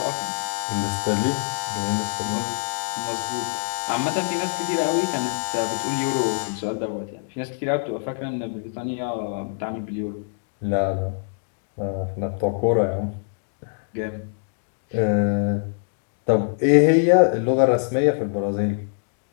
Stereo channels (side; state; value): right; silent; digital silence